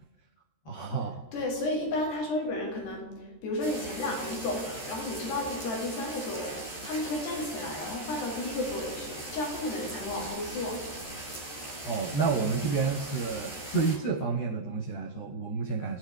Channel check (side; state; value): right; late; 13 ms